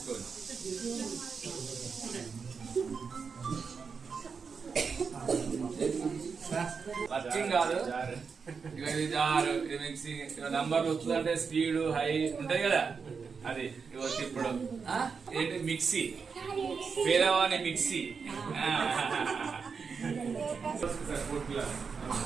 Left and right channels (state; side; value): quieter; left; 5.5 dB